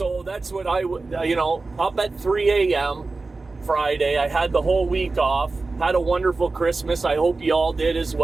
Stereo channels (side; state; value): left; quieter; 3.7 dB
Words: that's what up at 3 a.m. Friday, I had the whole week off. Had a wonderful Christmas. I hope you all did as